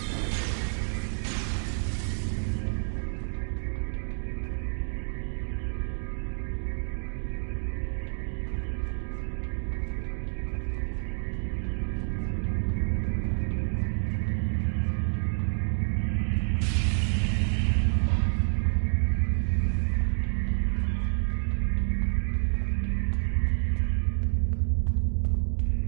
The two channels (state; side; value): silent; left; digital silence